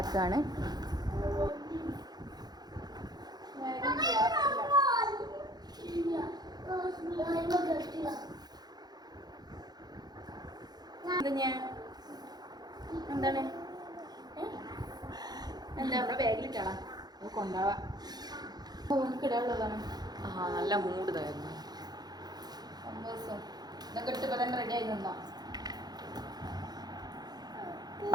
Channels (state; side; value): late; left; 0.19 ms